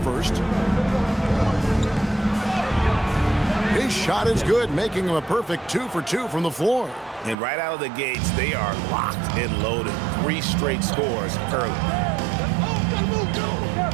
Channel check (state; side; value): drops out; left; at 7.4 s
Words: His shot is good, making him a perfect 2 for 2 from the floor. And right out of the gates, they are locked and loaded. 3 straight scores early.